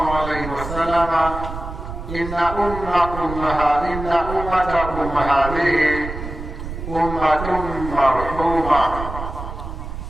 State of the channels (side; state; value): right; noise; rumble, 8 dB below the sound